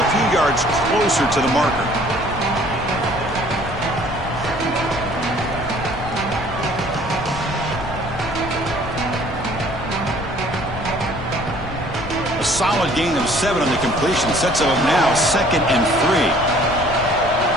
few yards closer to the marker. A solid gain of 7 on the completion. Sets him up now 2nd and 3.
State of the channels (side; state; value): left; noise; rumble, 9 dB below the sound